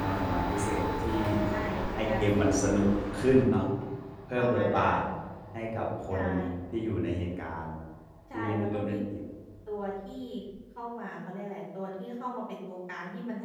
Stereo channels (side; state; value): both; identical; correlation 1.00